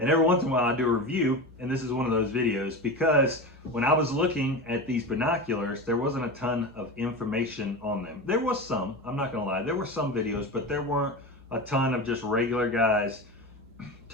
And every once in a while I do a review, and this is one of those videos because when I was looking at these binoculars, there wasn't a ton of information on them. There was some, I'm not gonna lie, there were some videos, but there weren't a ton of just regular guys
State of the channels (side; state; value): both; normal; correlation 0.25